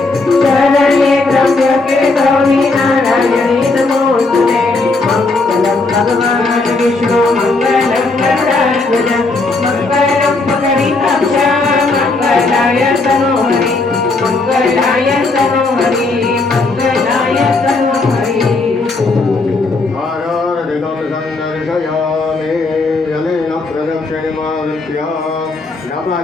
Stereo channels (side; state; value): right; quieter; 3.5 dB